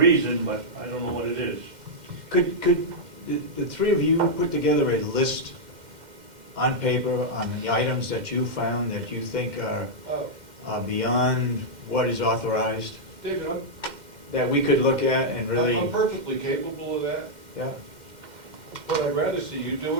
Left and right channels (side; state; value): left; late; 2.1 ms